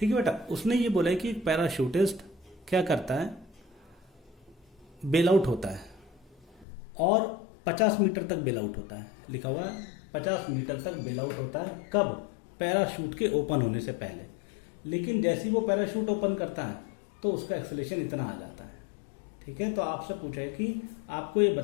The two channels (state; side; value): drops out; right; at 6.7 s